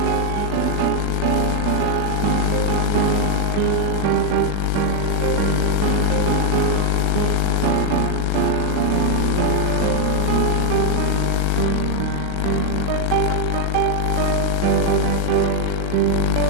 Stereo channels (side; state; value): both; different; correlation 0.00